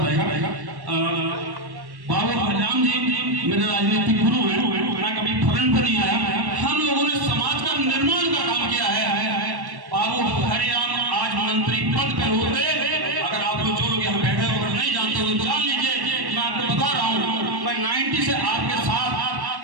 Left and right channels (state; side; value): late; left; 1.1 ms